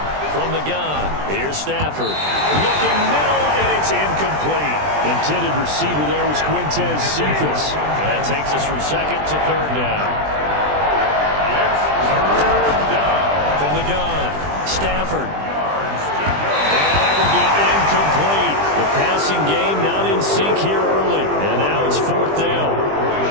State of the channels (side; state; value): left; late; 20 ms